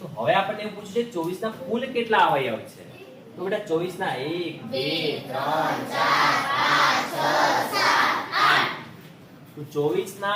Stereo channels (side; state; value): both; identical; correlation 1.00